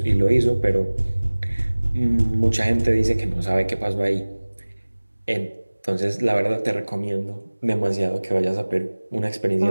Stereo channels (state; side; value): inverted; both; correlation -1.00